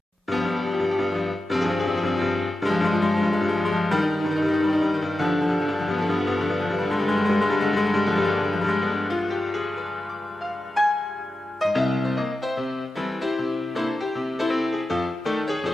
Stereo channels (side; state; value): both; normal; correlation 0.92